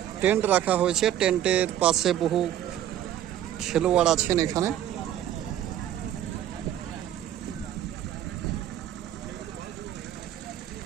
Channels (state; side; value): quieter; left; 11.5 dB